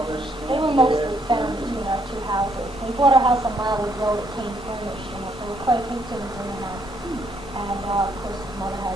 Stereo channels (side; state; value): both; normal; correlation 0.71